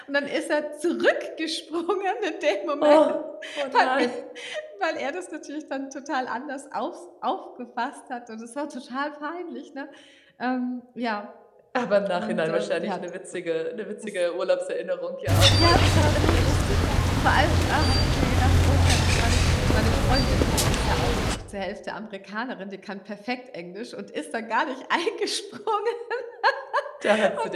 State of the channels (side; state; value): both; identical; correlation 1.00